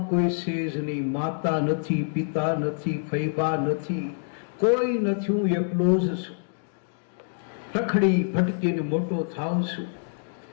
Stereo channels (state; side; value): silent; right; digital silence